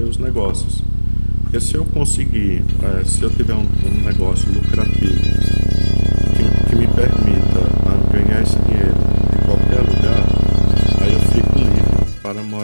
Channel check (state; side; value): inverted; both; correlation -1.00